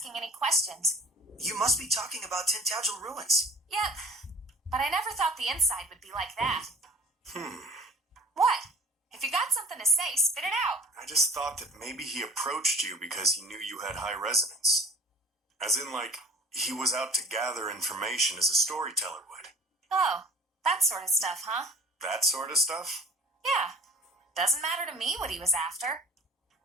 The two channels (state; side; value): normal; both; correlation 0.45